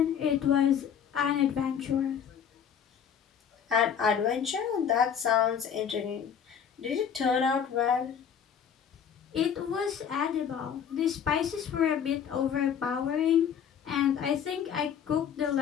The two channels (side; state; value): right; quieter; 8.0 dB